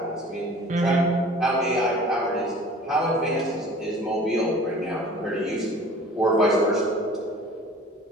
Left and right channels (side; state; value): both; normal; correlation 0.46